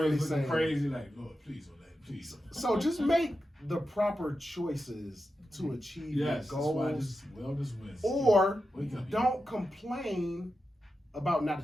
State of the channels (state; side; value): normal; both; correlation 0.90